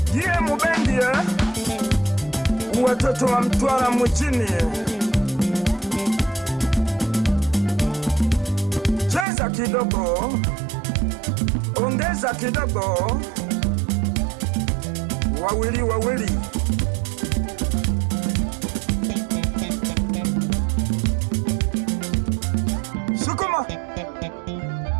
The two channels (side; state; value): left; drops out; at 9.2 s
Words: Jie Mubendi watoto wa Mtwara mjini, cheza kidogo, ongeza kidogo, wawili wawili. Sukuma,